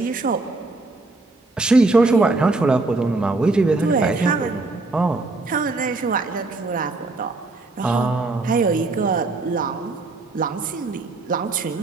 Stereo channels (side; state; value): left; quieter; 3.3 dB